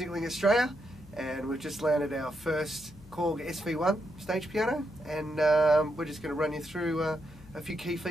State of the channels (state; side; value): noise; left; hum, 20 dB below the sound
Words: Australia, and we've just landed our first KORG SV-1 stage piano, and we're just going to run you through a few key